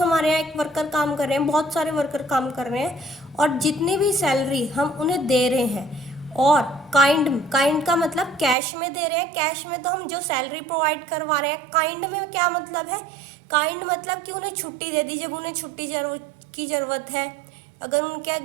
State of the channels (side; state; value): left; drops out; at 8.6 s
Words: हमारे यहाँ एक वर्कर काम कर रहे हैं, बहुत सारे वर्कर काम कर रहे हैं, और जितनी भी सैलरी हम उन्हें दे रहे हैं, और काइंड का मतलब कैश में दे रहे हैं। कैश में तो हम जो सैलरी प्रोवाइड करवा रहे हैं। काइंड में क्या मतलब है? काइंड मतलब कि उन्हें छुट्टी दे दी जब उन्हें छुट्टी की ज़रूरत है। अगर उनके